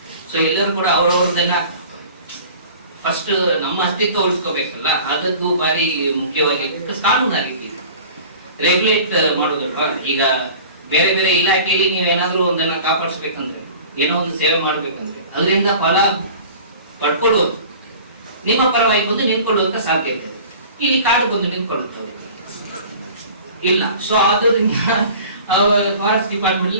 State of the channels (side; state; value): both; inverted; correlation -0.43